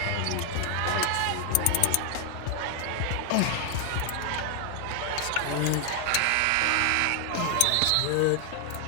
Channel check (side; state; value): both; different; correlation 0.00